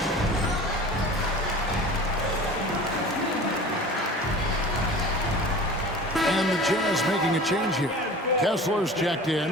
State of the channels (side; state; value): both; normal; correlation 0.39